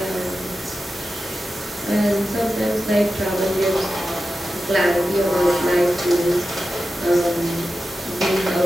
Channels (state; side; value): normal; both; correlation 0.92